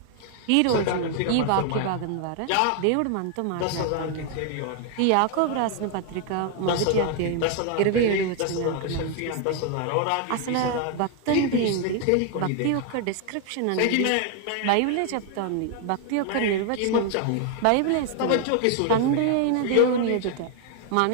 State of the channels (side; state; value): both; different; correlation 0.00